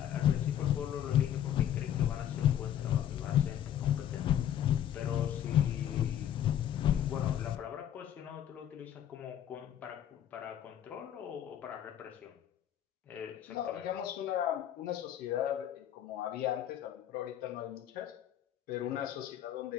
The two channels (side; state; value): right; quieter; 10.6 dB